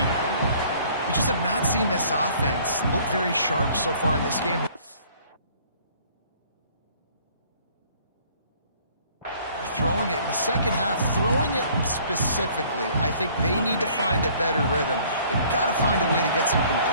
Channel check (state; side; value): inverted; both; correlation -0.57